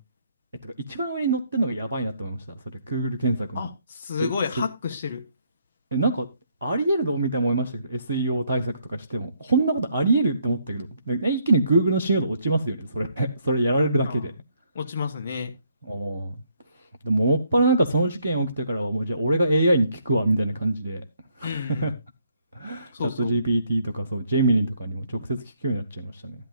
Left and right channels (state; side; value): inverted; both; correlation -0.70